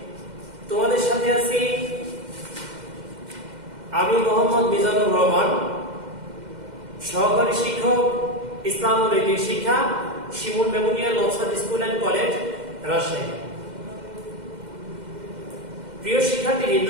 তোমাদের সাথে আছি আমি মোহাম্মদ মিজানুর রহমান, সহকারী শিক্ষক, ইসলাম ও নৈতিক শিক্ষা, Shimul memorial Nowshad school and college, Rajshahi. প্রিয় শিক্ষার্থীবৃন্দ,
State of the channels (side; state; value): left; late; 2.1 ms